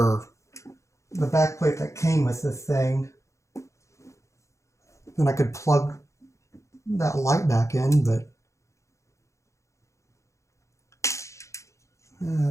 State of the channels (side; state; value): right; late; 0.15 ms